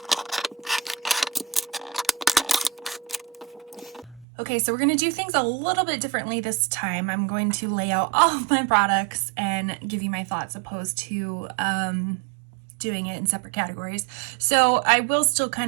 Okay, so we're going to do things a little bit differently this time. I'm going to lay out all of my products and give you my thoughts opposed to doing it in separate categories. So I will still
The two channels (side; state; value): left; drops out; at 4.2 s